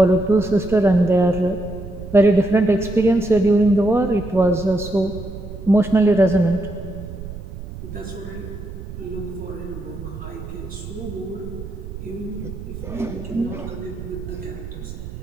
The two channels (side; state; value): right; noise; rumble, 11 dB below the sound